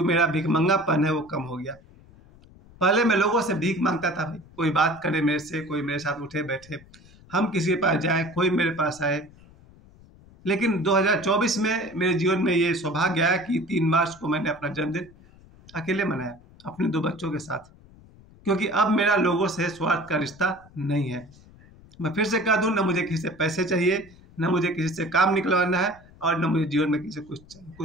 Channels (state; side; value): noise; left; rumble, 24 dB below the sound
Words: मेरा भिखमंगापन है वो कम हो गया। पहले मैं लोगों से भीख मांगता था, भाई कोई बात करे मेरे से, कोई मेरे साथ उठे बैठे, हम किसी के पास जाए, कोई मेरे पास आए। लेकिन 2024 में मेरे जीवन में ये सौभाग्य आया कि 3 मार्च को मैंने अपना जन्मदिन अकेले मनाया अपने 2 बच्चों के साथ, क्योंकि अब मेरा लोगों से स्वार्थ का रिश्ता नहीं है। मैं फिर से कह दूं, न मुझे किसी से पैसे चाहिए, न मुझे किसी से काम निकलवाना है, और न मुझे जीवन में किसी से